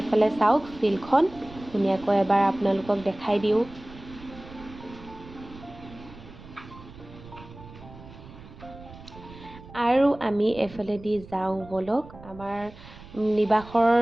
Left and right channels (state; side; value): noise; right; rumble, 18 dB below the sound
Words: চাওক ফিল্ডখন ধুনীয়াকৈ এবাৰ আপোনালোকক দেখাই দিওঁ আৰু আমি এফালেদি যাওঁ বলক আমাৰ নিবাসৰ